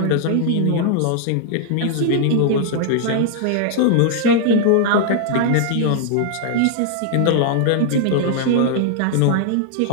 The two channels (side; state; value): both; different; correlation 0.00